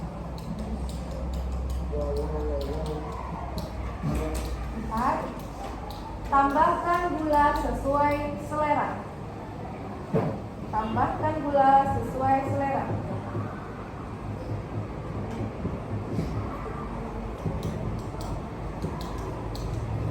Empat. Tambahkan gula sesuai selera. Tambahkan gula sesuai selera.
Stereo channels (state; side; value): identical; both; correlation 1.00